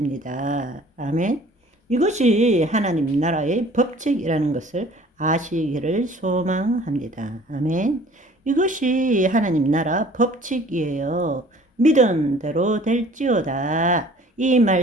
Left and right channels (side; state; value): both; normal; correlation 0.51